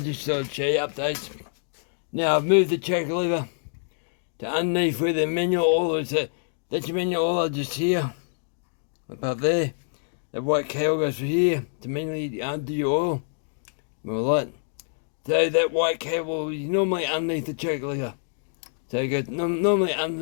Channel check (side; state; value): right; silent; digital silence